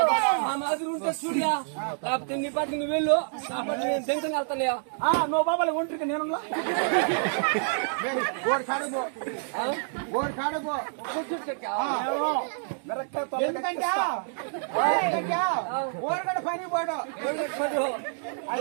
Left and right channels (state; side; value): silent; left; digital silence